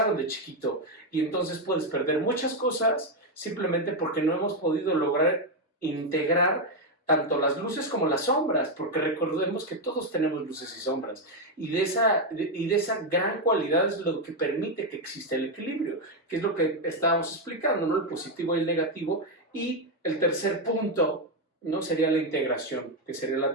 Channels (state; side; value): normal; both; correlation 0.05